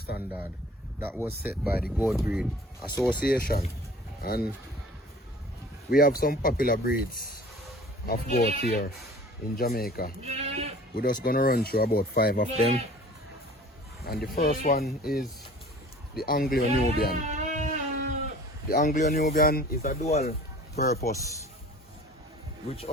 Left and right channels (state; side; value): normal; both; correlation 0.47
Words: that was set by the Goat Breed Association. And we have some popular breeds of goat here in Jamaica. We're just gonna run through about 5 of them. And the first one is the Anglo-Nubian. The Anglo-Nubian is a dual purpose which